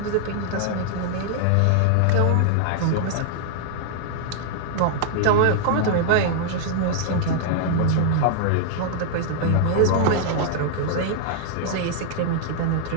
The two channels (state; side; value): different; both; correlation -0.01